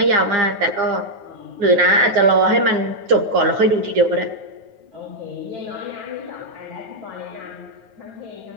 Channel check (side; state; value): left; late; 9.3 ms